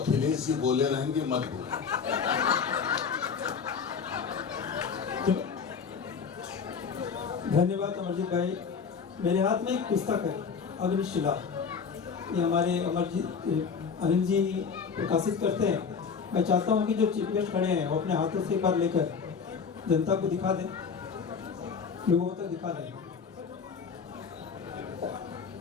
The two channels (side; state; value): right; quieter; 6.0 dB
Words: ही बोले रहेंगे, मत बोले। धन्यवाद अमरजीत भाई। मेरे हाथ में एक पुस्तक है, अग्निशिला। ये हमारे अनिल जी प्रकाशित करते हैं। मैं चाहता हूँ कि जो चीफ गेस्ट खड़े हैं वो अपने हाथों से एक बार लेकर जनता को दिखा दें, लोगों तक दिखा दें।